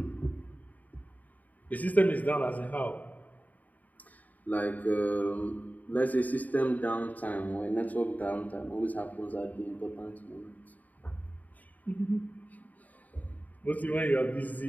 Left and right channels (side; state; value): right; late; 0.077 ms